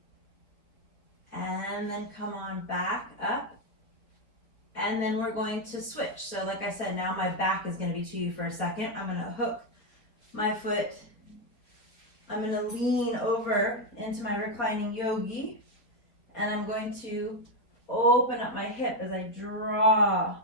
And then come on back up. And then we're going to switch. So like I said, now my back is going to be to you for a second. I'm going to hook my foot. I'm going to lean over into my reclining yogi. And I'm going to open up my hip as I draw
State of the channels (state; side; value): late; right; 4.3 ms